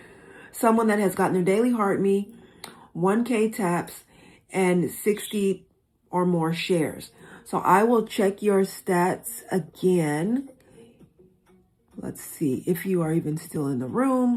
someone that has gotten their daily heart me, 1K taps, and 60 or more shares. So I will check your stats again. Let's see if you are even still in the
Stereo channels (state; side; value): identical; both; correlation 1.00